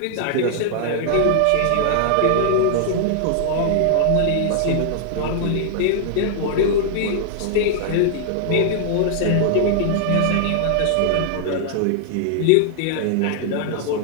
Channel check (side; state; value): both; different; correlation 0.00